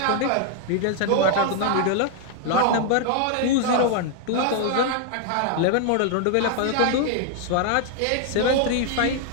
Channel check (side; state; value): both; different; correlation 0.00